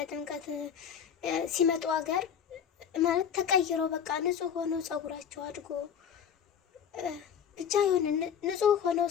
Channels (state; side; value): quieter; right; 8.1 dB